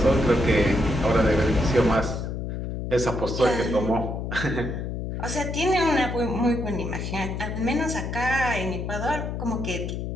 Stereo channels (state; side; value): noise; left; hum, 4 dB below the sound